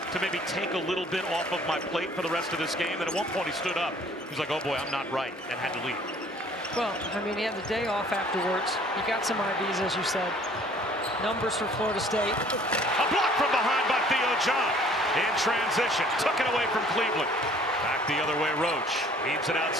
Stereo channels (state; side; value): normal; both; correlation 0.55